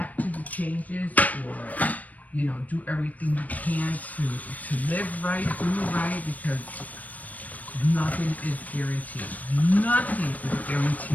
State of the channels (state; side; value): late; right; 0.074 ms